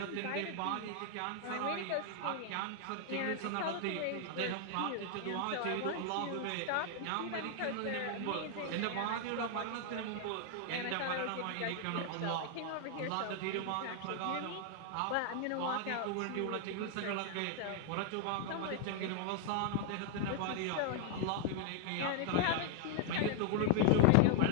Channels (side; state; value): both; different; correlation 0.00